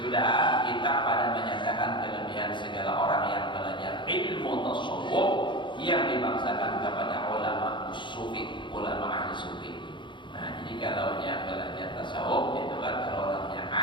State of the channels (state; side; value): late; right; 0.23 ms